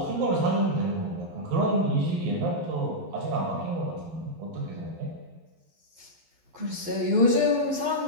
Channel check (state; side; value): late; left; 12 ms